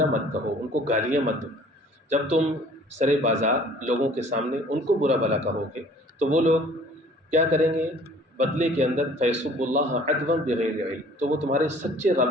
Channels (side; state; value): both; normal; correlation 0.52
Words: مت کہو، ان کو گالیاں مت دو۔ جب تم سرے بازار لوگوں کے سامنے ان کو برا بھلا کہو گے تو وہ لوگ کیا کریں گے؟ بدلے کے اندر فیسب اللہ عدوا بغیر علم، تو وہ تمہارے سچے